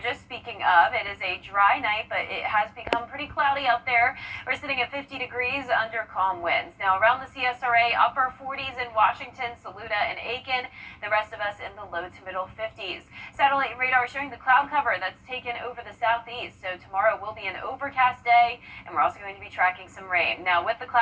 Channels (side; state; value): both; identical; correlation 1.00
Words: Speaking of, it is a dry night, but it has become pretty cloudy out there. We're sitting at 50 degrees under calm winds. Now around the CSRA, upper 40s in Washington, Saluda, and Aiken. The rest of us in the low to middle 50s. Satellite radar showing the cloud cover that's taken over the southeast. So tomorrow will be an overcast day, and we're also going to be tracking some rain. Now with the